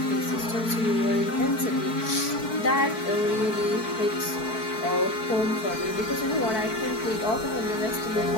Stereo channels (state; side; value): late; right; 4.6 ms